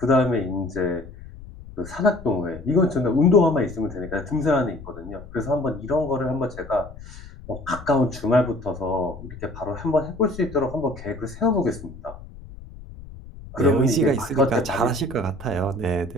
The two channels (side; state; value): left; noise; rumble, 16 dB below the sound